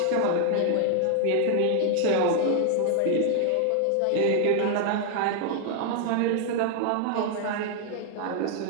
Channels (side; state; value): both; different; correlation 0.00